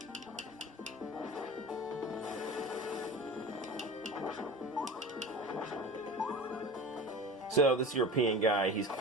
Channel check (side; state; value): both; normal; correlation 0.35